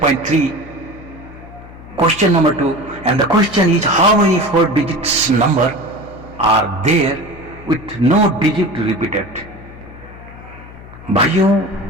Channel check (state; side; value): noise; left; hum, 18 dB below the sound